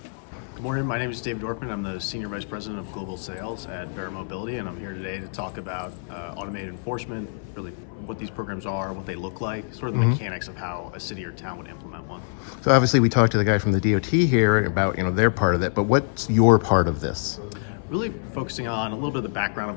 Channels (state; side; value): silent; right; 61 dB below the other